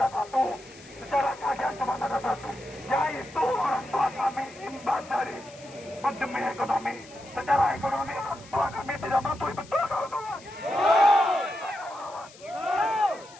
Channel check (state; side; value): noise; left; hiss, 22 dB below the sound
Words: satu. Secara kajian cuma ada satu, yaitu orang tua kami imbas dari pandemi ekonomi. Secara ekonomi orang tua kami tidak mampu, betul kawan-kawan?